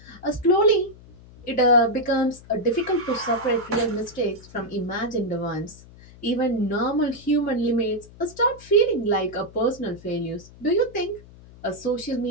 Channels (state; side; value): noise; left; hum, 21 dB below the sound